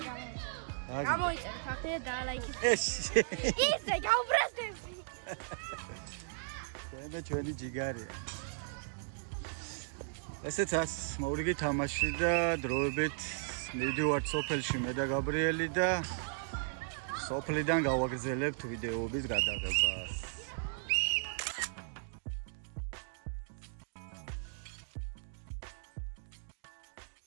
გამოიწერე ფაქტი და დაალაიქეთ. ეს ისე გავბრაზდეს. და ჩვენი ჯიგარია. ესეც მოვრიგი თამაში და დროებით მივდივართ სოფელში მე და გაბრიელი და სოფლიდან გავაგრძელებთ ვიდეოების გადაღებას.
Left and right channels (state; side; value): silent; left; digital silence